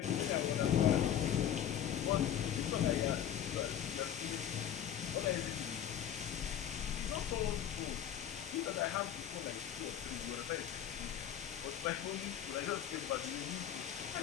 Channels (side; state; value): right; quieter; 9.8 dB